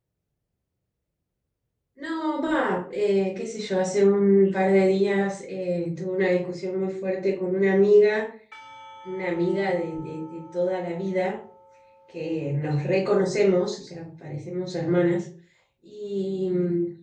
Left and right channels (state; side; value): identical; both; correlation 1.00